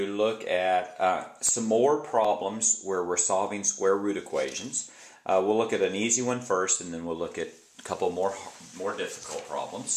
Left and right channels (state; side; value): identical; both; correlation 1.00